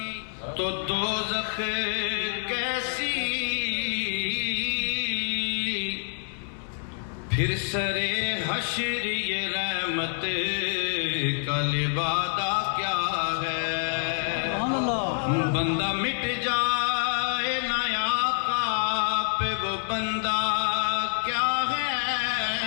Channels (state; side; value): silent; right; digital silence